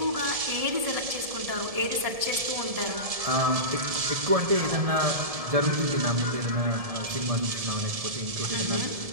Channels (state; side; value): late; left; 1.7 ms